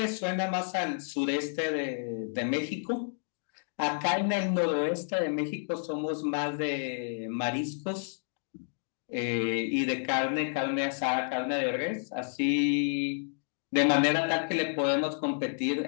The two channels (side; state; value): right; silent; digital silence